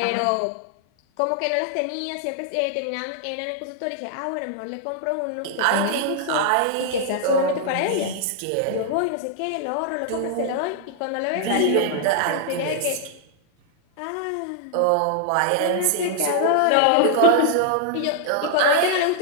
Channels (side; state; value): both; different; correlation 0.00